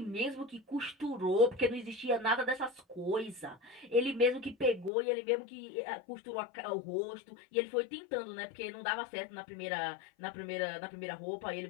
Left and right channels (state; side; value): drops out; right; at 4.9 s